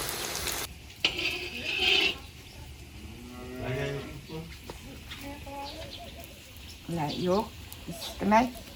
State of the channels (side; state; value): both; identical; correlation 1.00